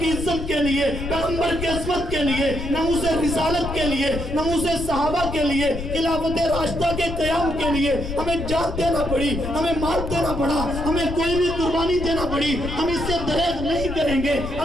کی عزت کے لیے، پیغمبر کی عظمت کے لیے، ناموس رسالت کے لیے، ناموس صحابہ کے لیے، خلافت راشدہ کے قیام کے لیے ہمیں جان دینا پڑی، ہمیں مال دینا پڑا، ہمیں کوئی بھی قربانی دینا پڑی، ہم اس سے دریغ نہیں کریں گے۔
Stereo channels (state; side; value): noise; left; rumble, 7 dB below the sound